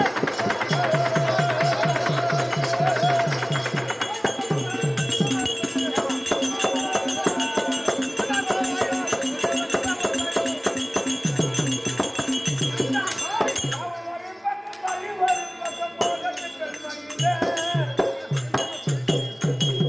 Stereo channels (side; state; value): both; identical; correlation 1.00